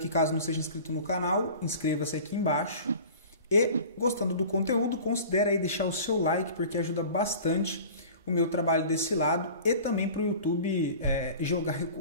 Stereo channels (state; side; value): inverted; both; correlation -0.41